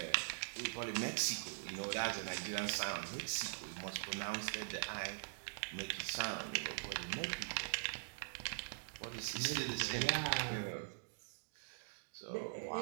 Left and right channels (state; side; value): silent; left; digital silence